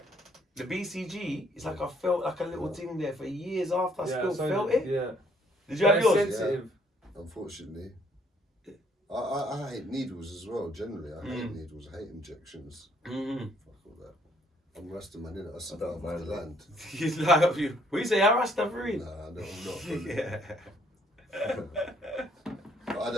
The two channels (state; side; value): normal; both; correlation 0.65